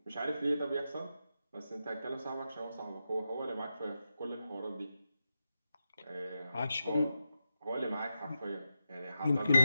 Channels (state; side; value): inverted; both; correlation -0.89